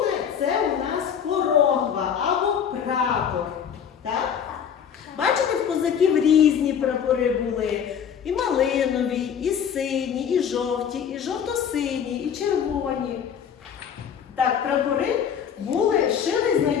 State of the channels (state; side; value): quieter; right; 8.0 dB